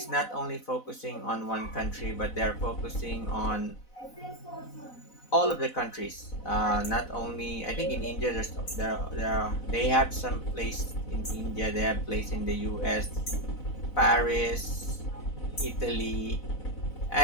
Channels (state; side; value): late; right; 4.0 ms